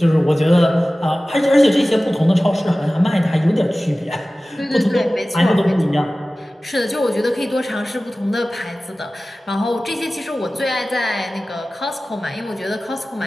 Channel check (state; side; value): normal; both; correlation 0.97